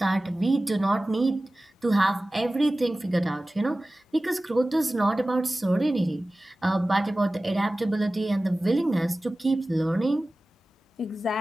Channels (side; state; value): both; normal; correlation 0.97